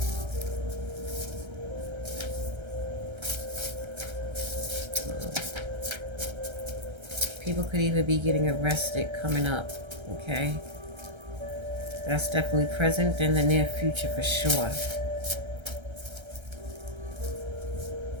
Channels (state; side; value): late; left; 1.3 ms